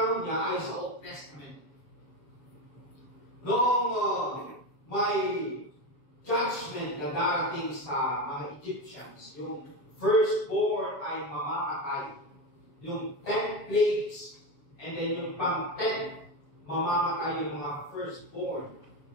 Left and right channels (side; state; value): right; late; 7.2 ms